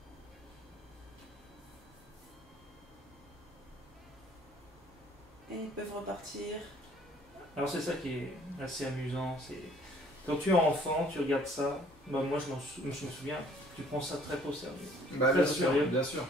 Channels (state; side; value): normal; both; correlation 0.58